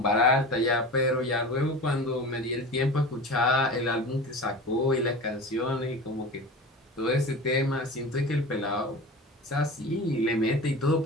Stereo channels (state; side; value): normal; both; correlation 0.33